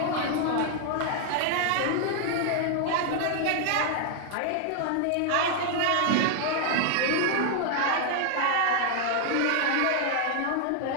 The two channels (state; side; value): different; both; correlation 0.00